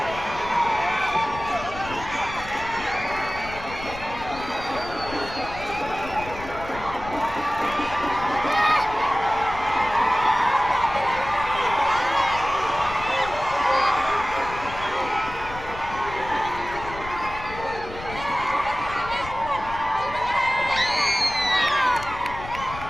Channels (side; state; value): left; noise; rumble, 13 dB below the sound